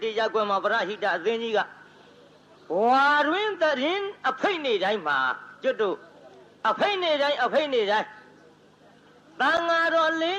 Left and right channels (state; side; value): identical; both; correlation 1.00